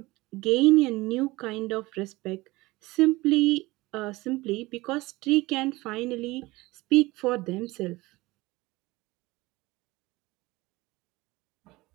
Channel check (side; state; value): left; quieter; 20.8 dB